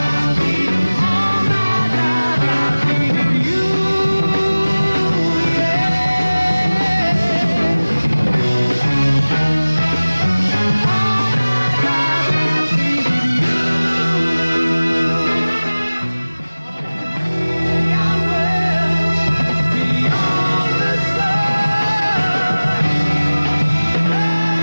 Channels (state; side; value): inverted; both; correlation -1.00